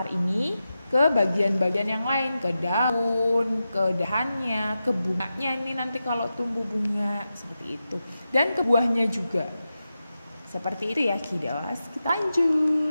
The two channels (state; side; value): inverted; both; correlation -0.91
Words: ini ke bagian-bagian yang lain, ke daun, ke dahannya, ke bunganya ini nanti kalau tumbuh bunga seperti itu, dan ke buahnya juga. Seperti itu ya kiddos. Kita